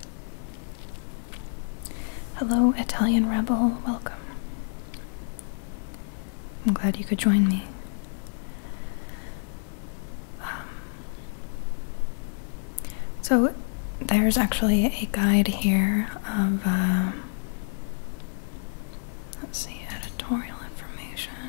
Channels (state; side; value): silent; right; digital silence